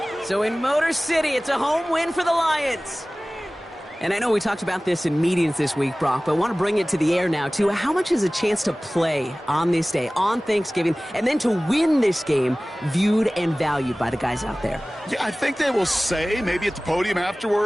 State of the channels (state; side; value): normal; both; correlation 0.98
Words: So in Motor City, it's a home win for the Lions. And I know we talked about this in meetings this week, Brock, but I want to bring it to the air now, too. How much is a chance to play on this day, on Thanksgiving, and then to win this game viewed and valued by the guys out there? Yeah, I think they will say, maybe at the podium